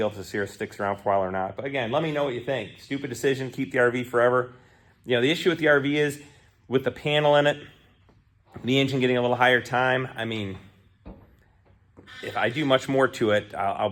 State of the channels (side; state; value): both; identical; correlation 1.00